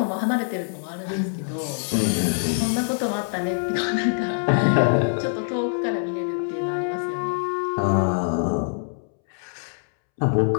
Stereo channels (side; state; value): right; silent; 62 dB below the other